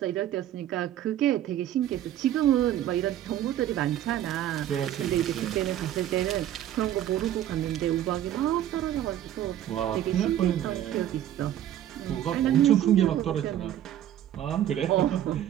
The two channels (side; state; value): left; quieter; 11.7 dB